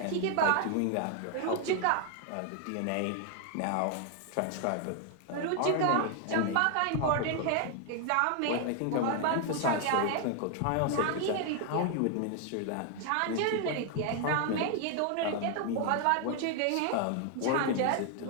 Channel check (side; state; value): both; different; correlation 0.00